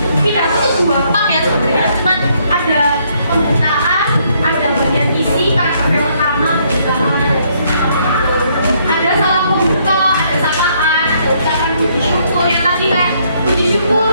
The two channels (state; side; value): inverted; both; correlation -0.70